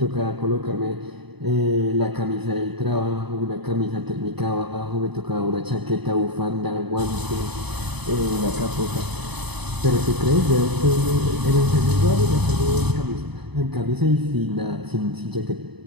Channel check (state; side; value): late; left; 0.99 ms